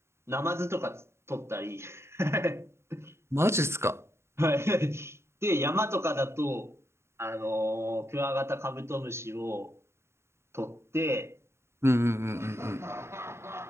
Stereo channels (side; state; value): left; late; 0.13 ms